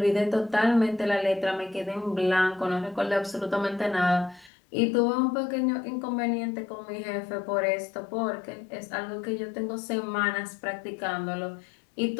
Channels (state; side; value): drops out; right; at 4.5 s